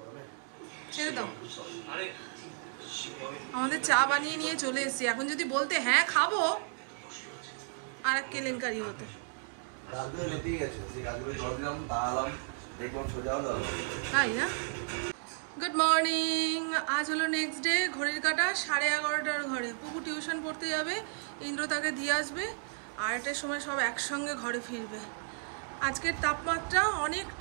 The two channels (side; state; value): left; silent; 56 dB below the other